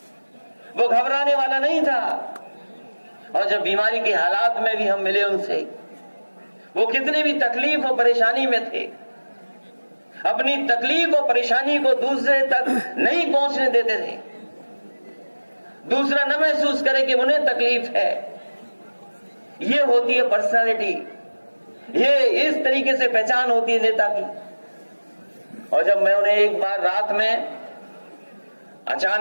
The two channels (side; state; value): both; inverted; correlation -1.00